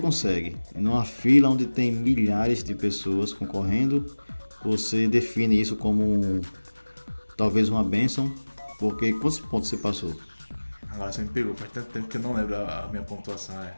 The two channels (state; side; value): inverted; both; correlation -1.00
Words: Numa fila onde tem milhares de pessoas concorrendo, você define isso como talvez uma bênção, porque quantos pontos você passou? Agora você me pegou, faz tanto tempo que eu não lembro a minha pontuação,